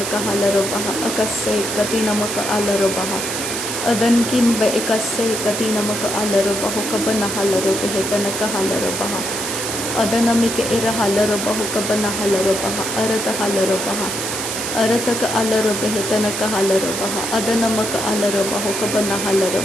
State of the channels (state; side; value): noise; right; hiss, 4 dB below the sound